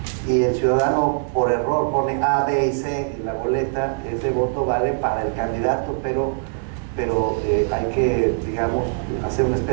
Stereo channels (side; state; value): left; silent; 64 dB below the other